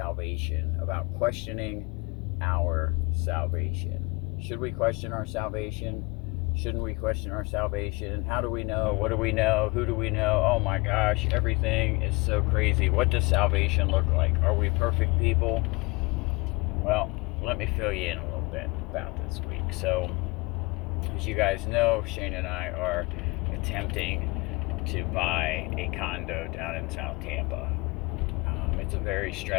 about questioning our salvation. Should we question our salvation? Shouldn't we question our salvation? How do we know? What do we know? Who do we know? Oh my gosh, everything is so crazy. What does salvation look like? Are we perfect people? Well, let me fill you in a little bit about this week. So, as you guys know, Shane and I are attempting to buy a condo down in South Tampa. It's a very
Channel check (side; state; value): right; quieter; 26.2 dB